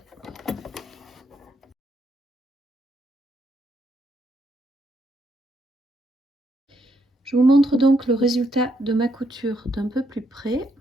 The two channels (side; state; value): both; normal; correlation 0.75